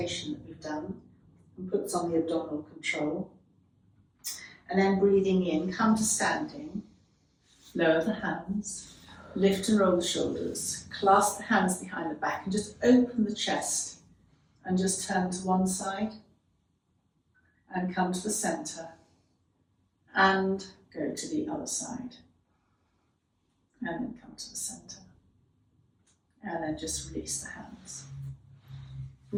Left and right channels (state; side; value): identical; both; correlation 1.00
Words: that we've done and puts on the abdominal control. And then breathing in, come to standing, lower the hands, lift and roll the shoulders, clasp the hands behind the back and just open the chest and just turn to one side and come to the centre and go to the other side and then come to the centre. And then just release the hands.